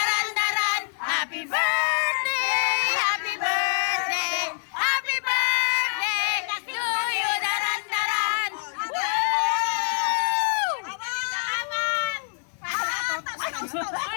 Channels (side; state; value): right; silent; digital silence